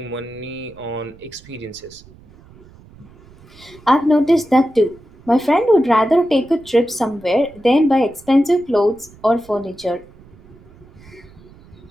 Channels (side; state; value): right; noise; rumble, 24 dB below the sound